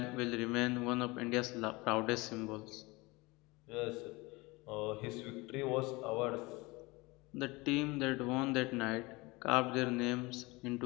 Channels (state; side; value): quieter; right; 23.6 dB